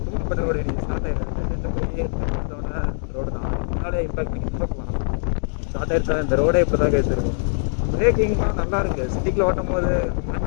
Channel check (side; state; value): right; silent; digital silence